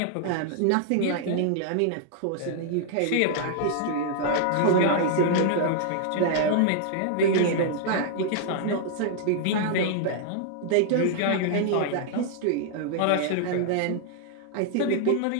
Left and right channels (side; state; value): both; different; correlation -0.01